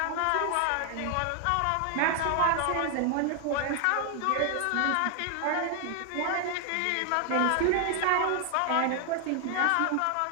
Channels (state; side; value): different; both; correlation 0.00